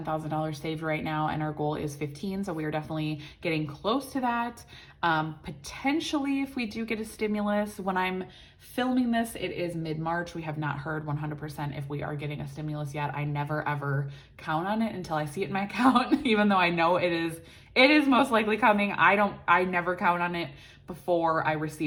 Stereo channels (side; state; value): both; identical; correlation 1.00